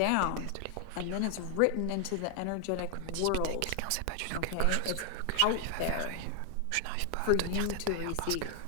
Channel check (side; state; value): both; different; correlation 0.00